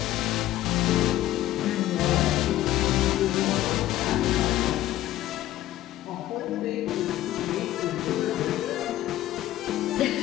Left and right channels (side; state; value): right; quieter; 14.2 dB